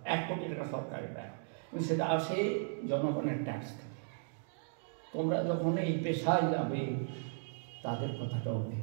1 কোটি টাকা সরকারের দেয়, কিন্তু সেটা আসে জনগণের ট্যাক্স থেকে। তোমরা যখন এই পেশায় যাবে, তাদের কথাটাও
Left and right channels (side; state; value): left; silent; digital silence